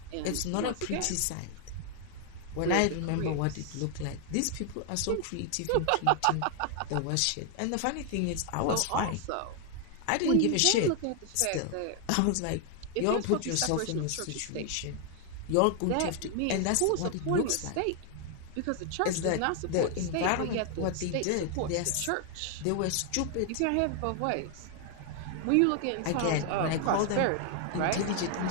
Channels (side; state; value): both; different; correlation 0.00